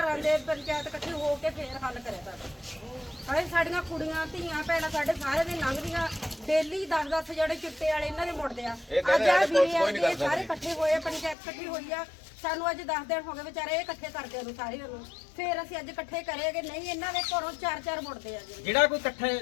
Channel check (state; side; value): drops out; right; at 11.4 s